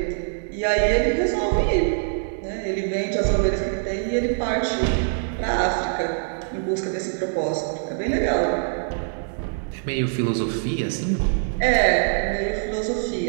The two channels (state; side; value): silent; left; digital silence